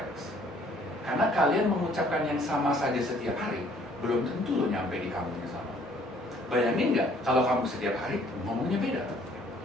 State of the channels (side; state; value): both; normal; correlation 0.60